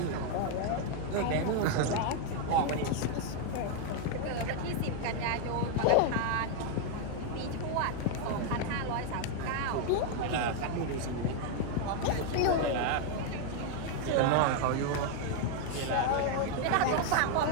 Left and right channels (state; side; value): different; both; correlation 0.01